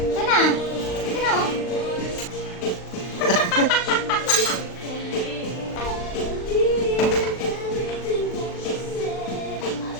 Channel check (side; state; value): right; late; 39 ms